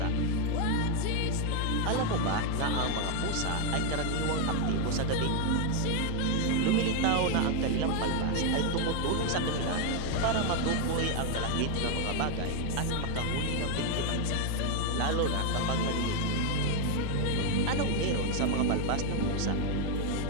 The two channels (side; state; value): both; different; correlation 0.01